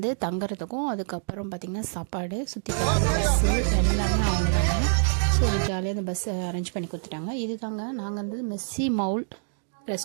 தங்குறதுக்கும் அதுக்கப்புறம் பார்த்திங்கன்னா சாப்பாடு, சுற்றி பார்க்குற பஸ்ஸு எல்லாமே அவங்க தாங்க. ஸோ ஜாலியாக அந்த பஸ்ஸை அரேஞ்ச் பண்ணி கொடுத்துட்டாங்க. இது தாங்க நாங்கள் வந்து மெஸ்ஸி மவுல்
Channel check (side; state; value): left; silent; digital silence